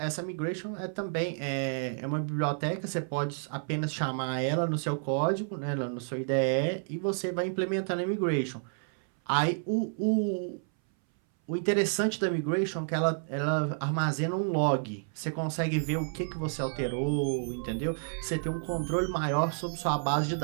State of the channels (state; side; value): silent; left; 58 dB below the other